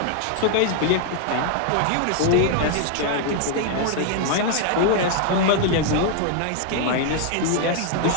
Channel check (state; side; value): different; both; correlation 0.00